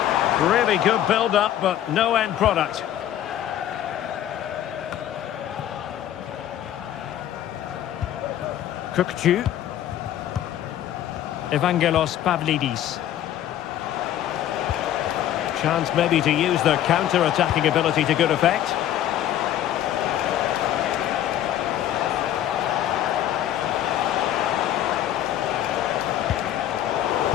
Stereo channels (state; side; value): quieter; right; 11.7 dB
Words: Really good build-up, but no end product. Kökçü. Evangelos Pavlidis. Chance maybe to use their counter-attacking ability to good effect.